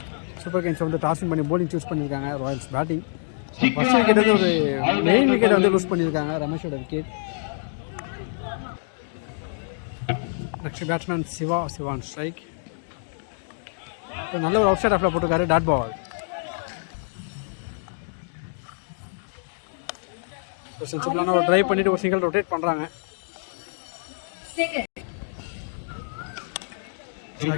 சூப்பர் ஜெயின்ஸ் வந்து டாஸிங் பண்ணி போலிங் சூஸ் பண்ணியிருக்காங்க. Royals batting. ஃபர்ஸ்ட் விக்கெட் வந்து ஒரு மெயின் விக்கெட் வந்து லூஸ் பண்ணியிருக்காங்க. ரமேஷோட wicket. Next batsman Shivan strike. நல்ல ஒரு அவுட் சைட் ஆஃப்ல போட்டிருக்காரு. Dot ball. சிம்பிளான ஒரு டிரைவ் பண்ணிட்டு ஒரு சிங்கிள் ரொட்டேட் பண்றாங்க.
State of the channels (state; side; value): silent; right; digital silence